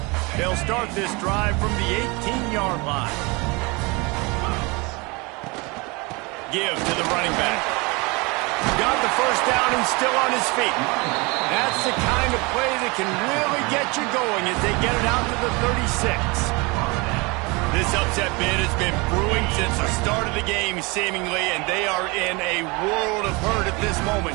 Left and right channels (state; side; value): quieter; left; 26.8 dB